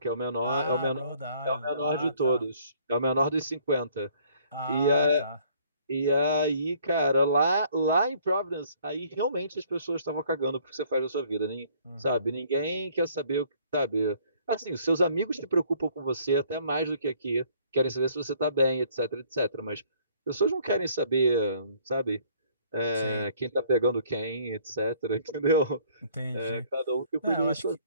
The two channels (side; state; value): both; inverted; correlation -0.59